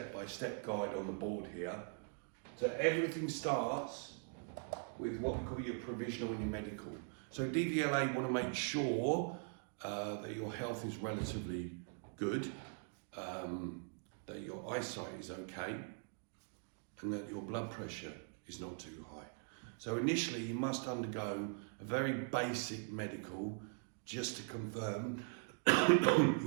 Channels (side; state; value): left; silent; 50 dB below the other